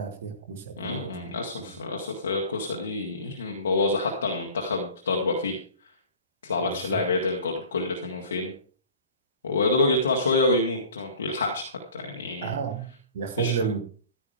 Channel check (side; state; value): both; inverted; correlation -0.45